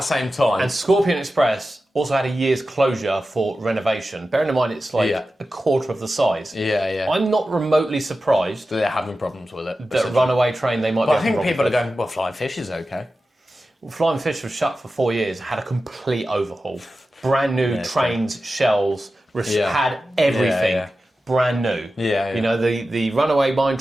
same time. And Scorpion Express also had a year's closure for renovation. Bearing in mind it's like a quarter of the size. Yeah. I'm not remotely surprised They're having problems with it. that Runaway Train they might But be I think having people are problems going, well, Flying Fish is okay. with. Flying Fish was shut for 4 years, had a complete overhaul. Brand new trains, shells, had everything. Yeah. Brand new. Yeah. You know, the Runaway Mine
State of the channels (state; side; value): normal; both; correlation 0.93